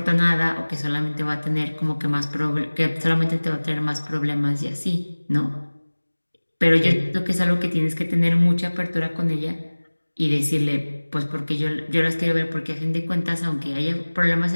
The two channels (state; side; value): inverted; both; correlation -1.00